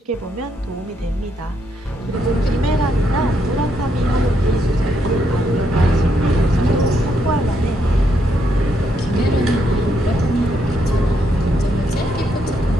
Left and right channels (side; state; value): both; normal; correlation 0.77